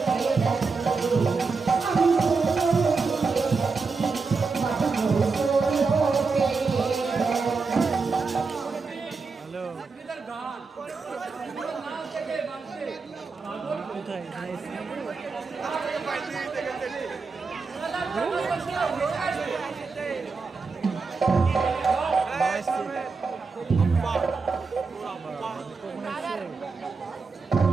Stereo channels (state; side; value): quieter; left; 4.5 dB